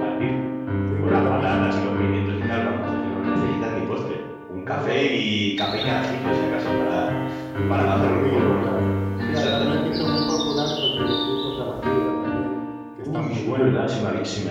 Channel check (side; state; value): both; identical; correlation 1.00